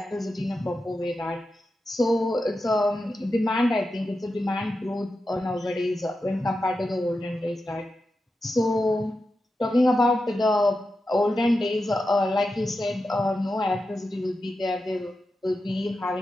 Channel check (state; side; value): normal; both; correlation 0.90